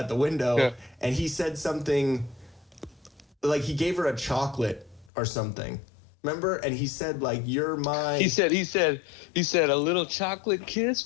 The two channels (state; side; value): drops out; right; at 5.1 s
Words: the window, and he said something like he gave her a chocolate or something. Remember? And he said, like, you're my... He said, a little chocolate kiss